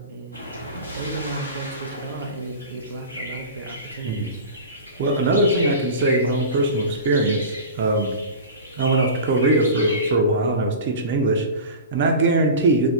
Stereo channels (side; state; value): both; inverted; correlation -0.32